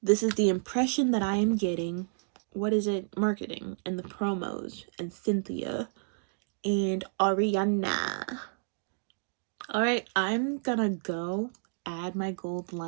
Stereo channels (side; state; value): left; silent; digital silence